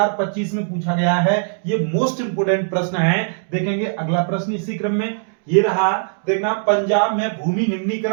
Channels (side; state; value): left; silent; digital silence